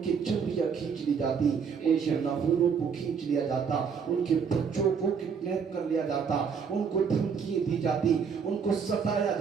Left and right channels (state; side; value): quieter; left; 6.4 dB